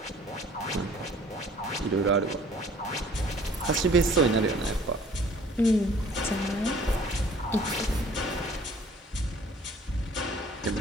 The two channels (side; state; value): both; normal; correlation 0.53